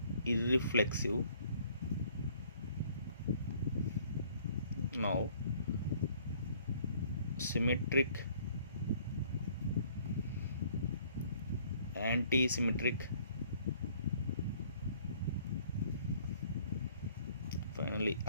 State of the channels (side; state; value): both; inverted; correlation -0.59